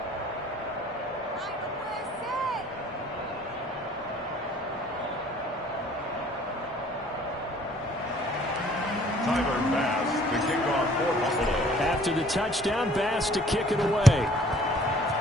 After the touchdown, Bass to kick it away.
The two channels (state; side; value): normal; both; correlation 0.56